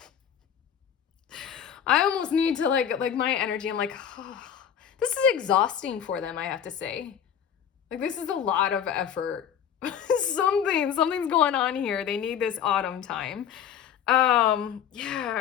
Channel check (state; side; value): quieter; right; 8.7 dB